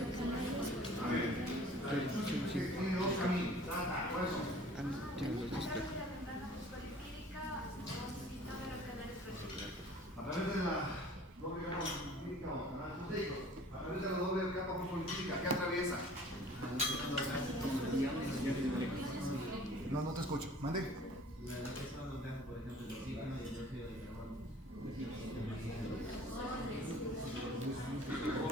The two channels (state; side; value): normal; both; correlation 0.49